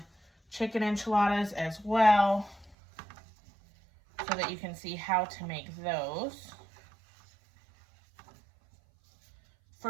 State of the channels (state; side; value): drops out; left; at 2.8 s